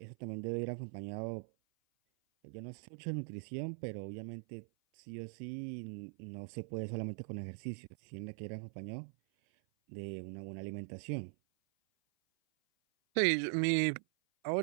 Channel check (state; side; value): silent; left; 50 dB below the other